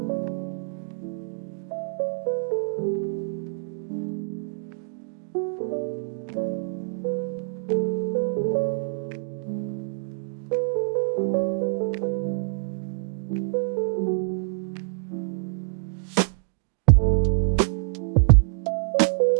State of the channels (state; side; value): silent; left; 61 dB below the other